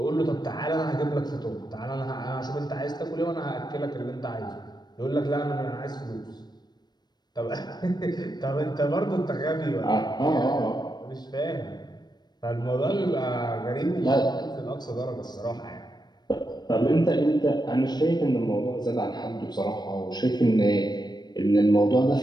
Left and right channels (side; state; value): right; late; 0.20 ms